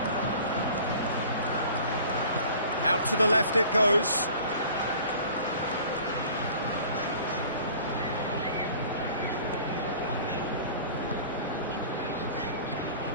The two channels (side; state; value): both; inverted; correlation -0.46